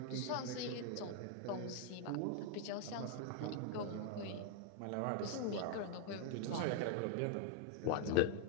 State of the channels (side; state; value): both; different; correlation 0.00